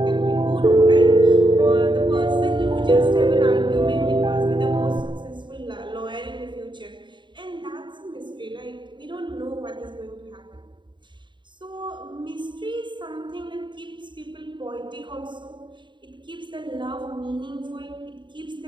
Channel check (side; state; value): left; late; 0.23 ms